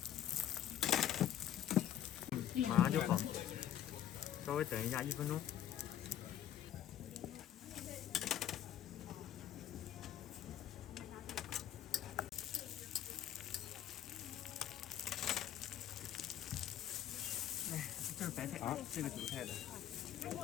马上就好，稍微等一下1分钟。哎，这是白菜啊，这个韭菜的。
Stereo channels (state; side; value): quieter; right; 11.0 dB